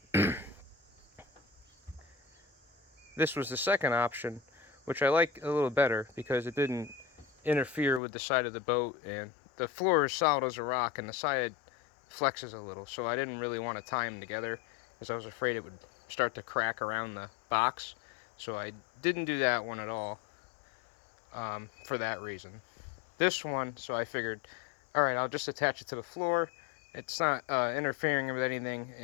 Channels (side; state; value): right; drops out; at 8.0 s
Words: This was the second option, which I like a little better because it didn't interfere with the side of the boat, and the floor is solid as a rock and the side flexes a little, so I didn't really want to tie them together because I was afraid it would start to crack around the box. So I didn't do that one at all for that reason. This one, so I figured, alright, I'll just attach it to the floor. It's not interfering with anything,